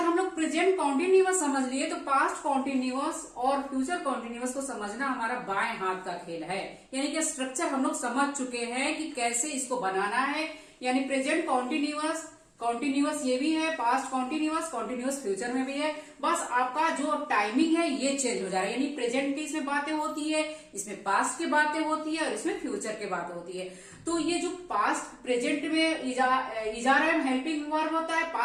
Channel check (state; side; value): identical; both; correlation 1.00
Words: लोग प्रेजेंट कॉन्टिन्यूअस समझ लिए तो पास्ट कॉन्टिन्यूअस और फ्यूचर कॉन्टिन्यूअस को समझना हमारा बाएं हाथ का खेल है। यानी कि स्ट्रक्चर हम लोग समझ चुके हैं कि कैसे इसको बनाना है। यानी प्रेजेंट कॉन्टिन्यूअस ये भी है, पास्ट कॉन्टिन्यूअस फ्यूचर में भी है। बस आपका जो टाइमिंग है ये चेंज हो जा रहा है। यानी प्रेजेंट की इसमें बातें होती है, इसमें पास्ट की बातें होती है और इसमें फ्यूचर की बातें होती है। तो ये जो पास्ट प्रेजेंट में इजार एम हेल्पिंग वर्ब होता है,